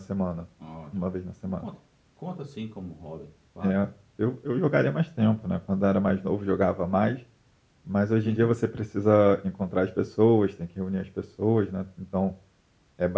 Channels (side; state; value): both; identical; correlation 1.00